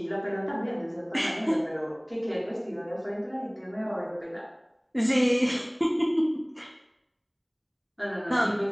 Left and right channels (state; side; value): identical; both; correlation 1.00